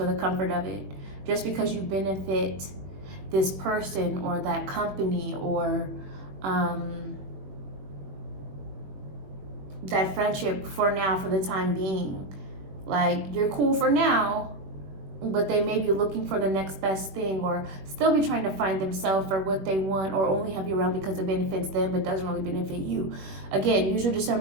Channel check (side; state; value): left; late; 21 ms